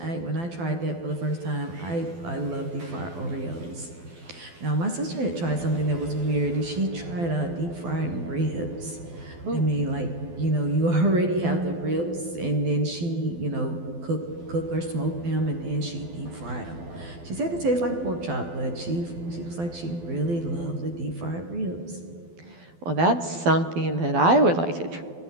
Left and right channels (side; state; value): left; late; 12 ms